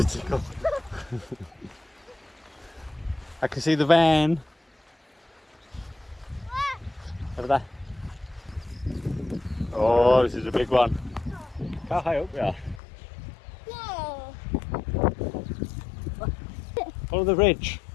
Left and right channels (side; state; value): right; drops out; at 12.8 s